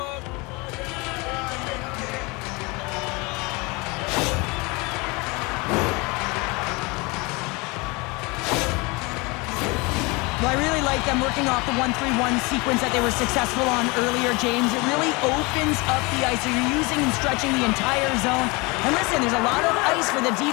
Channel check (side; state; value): right; quieter; 26.4 dB